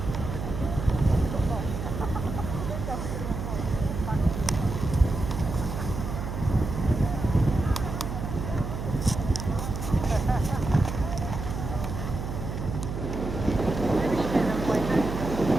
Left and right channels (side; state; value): right; noise; hum, 5 dB below the sound